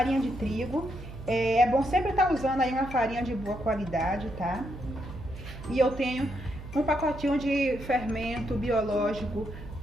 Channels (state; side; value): noise; right; hum, 12 dB below the sound